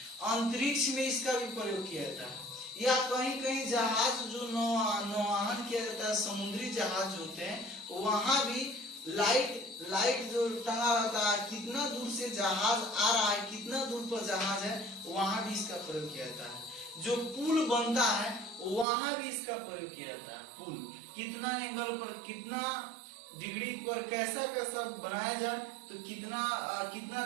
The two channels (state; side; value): drops out; left; at 18.9 s